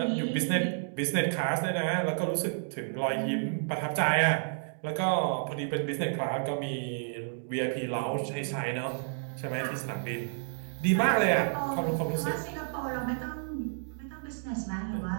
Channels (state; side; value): silent; left; digital silence